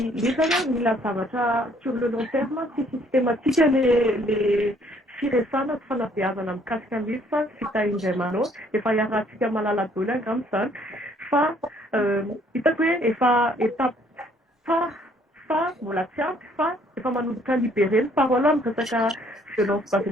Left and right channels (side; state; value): both; normal; correlation 0.63